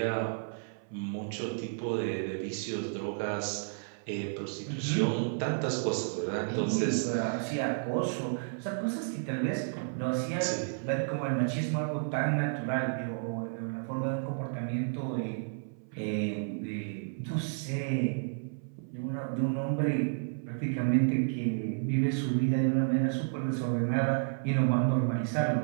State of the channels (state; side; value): silent; left; 57 dB below the other